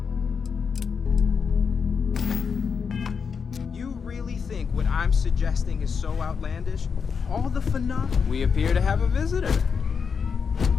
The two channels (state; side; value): quieter; right; 6.0 dB